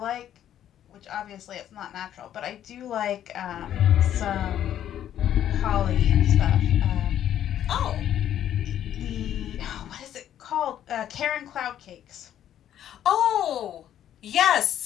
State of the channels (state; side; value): quieter; right; 10.9 dB